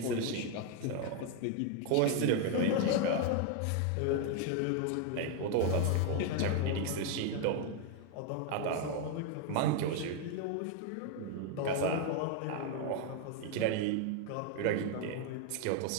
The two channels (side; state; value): both; different; correlation 0.01